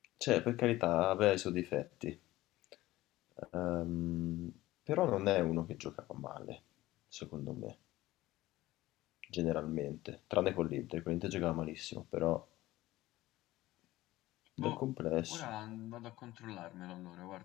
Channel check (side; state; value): right; quieter; 17.1 dB